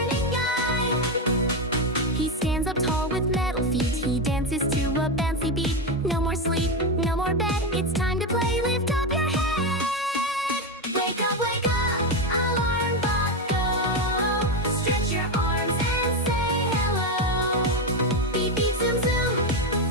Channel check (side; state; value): both; normal; correlation 0.11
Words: guide. He stands up tall with metal feet. He dances to a bouncy beat. No more sleep, no more bed. It's time to play. Lift up your head. Wake up, alarm clock go. Stretch your arms and say hello. Beep beep zoom zoom,